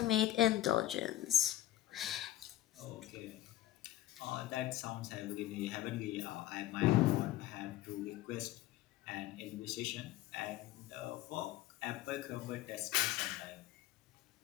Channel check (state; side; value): quieter; right; 14.1 dB